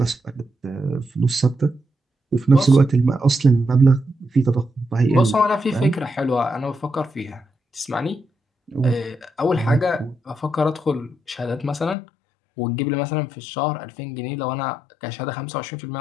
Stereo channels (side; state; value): right; drops out; at 12.0 s